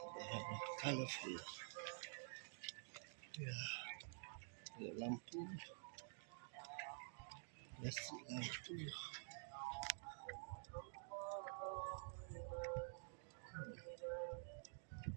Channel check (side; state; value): left; silent; digital silence